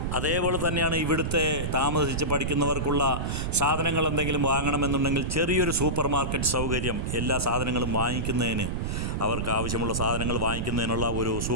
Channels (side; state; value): right; noise; rumble, 2 dB below the sound